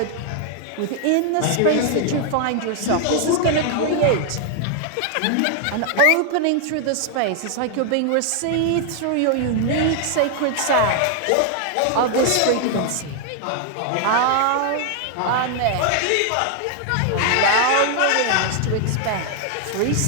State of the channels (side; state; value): both; different; correlation 0.00